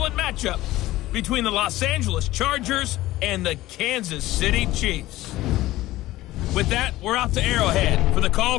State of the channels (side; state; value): right; quieter; 16.7 dB